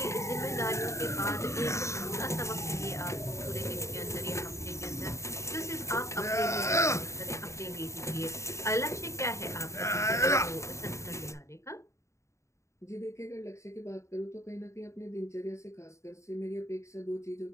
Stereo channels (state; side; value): late; right; 0.14 ms